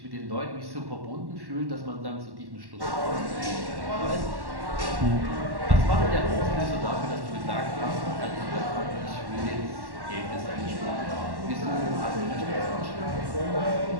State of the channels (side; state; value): left; late; 1.1 ms